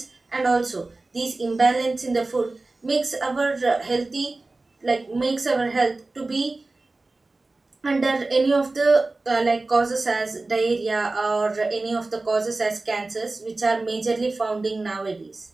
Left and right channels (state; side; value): quieter; left; 3.3 dB